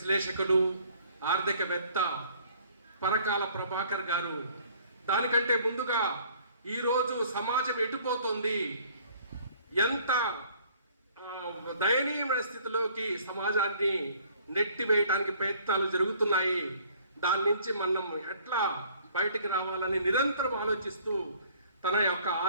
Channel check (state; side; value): inverted; both; correlation -0.57